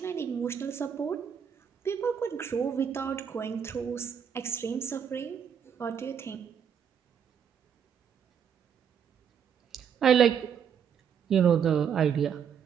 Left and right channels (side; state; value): left; quieter; 7.8 dB